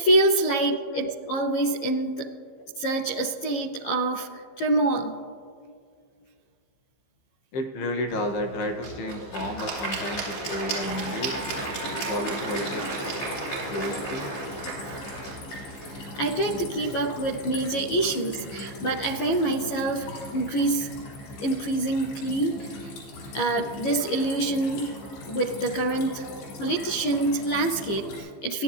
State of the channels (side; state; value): right; late; 15 ms